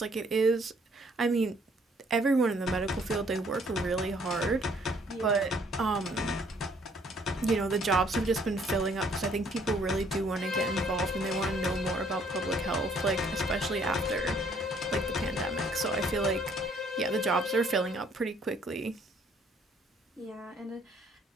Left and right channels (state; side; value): normal; both; correlation 0.63